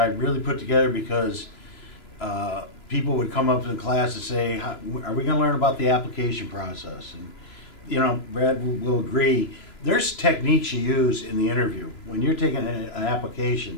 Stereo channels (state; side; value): late; right; 3.0 ms